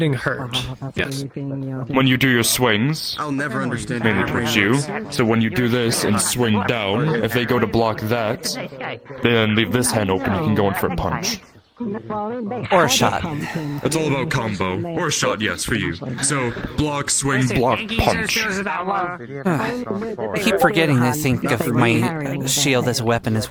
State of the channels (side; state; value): both; identical; correlation 1.00